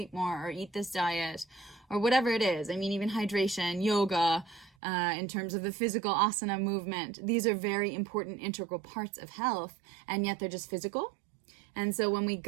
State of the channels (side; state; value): left; drops out; at 4.7 s